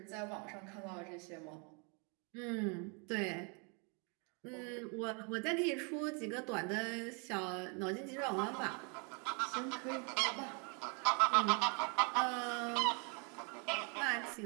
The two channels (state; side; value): quieter; left; 35.7 dB